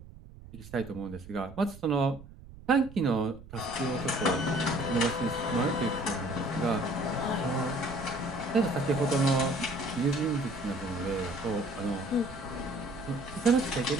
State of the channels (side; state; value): right; noise; rumble, 17 dB below the sound